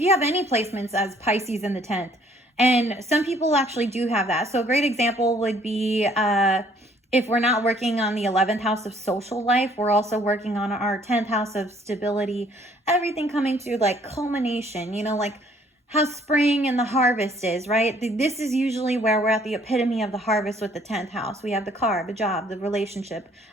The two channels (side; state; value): both; normal; correlation 0.61